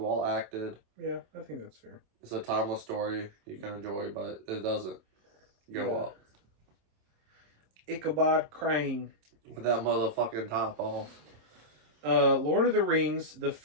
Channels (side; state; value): left; late; 27 ms